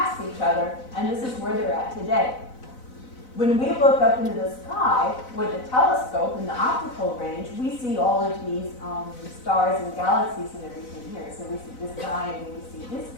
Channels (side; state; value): right; late; 4.0 ms